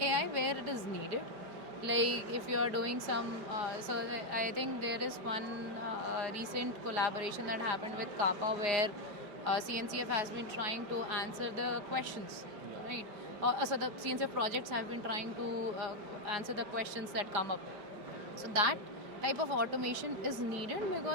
where it is needed. Like if you are doing some, I think there is one recent collaboration that happened with Kappa where CNCF has been trying to answer the questions, right? So the CNCF projects have been trying to answer the questions that come up. So that type of automation is needed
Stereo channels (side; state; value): left; late; 5.1 ms